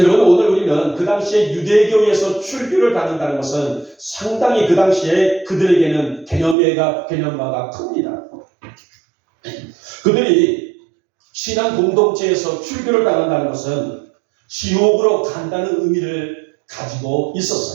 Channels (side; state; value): left; drops out; at 6.6 s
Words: 오늘 우리는 그 당시에 유대교에서 출교를 다닌다는 것은 상당히 그 당시에 그들에게는 개념화가 큽니다. 그들이 신앙 공동체에서 출교를 당한다는 것은 지옥으로 간다는 의미를 가지고